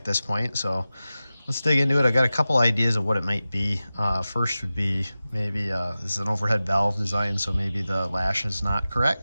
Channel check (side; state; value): both; inverted; correlation -0.95